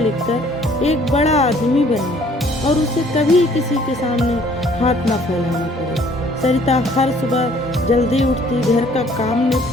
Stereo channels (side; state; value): both; normal; correlation 0.58